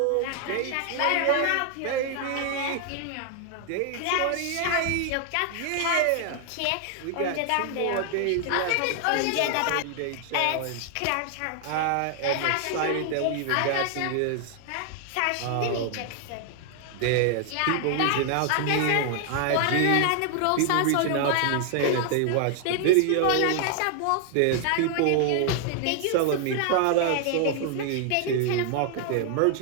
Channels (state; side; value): different; both; correlation 0.00